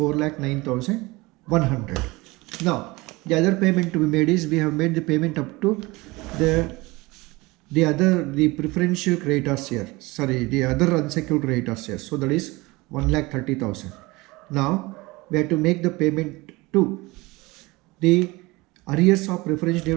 Now the other payment to be made is, we have made the payment up to the preferential creditors here, the other unsecured creditors here. So that is 1,30,000. Now we have to make the payment to the arrears of preference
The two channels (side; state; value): left; quieter; 22.5 dB